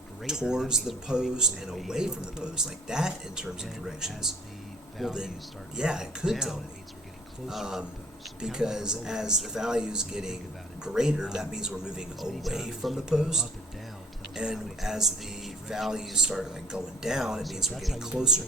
towards the post and away from the post, like that in terms of directions, well then, yeah, it could tell me. Because as the value is getting greater, that means we're moving away from the post. And as the values start like going down, it means we're getting closer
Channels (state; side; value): normal; both; correlation 0.56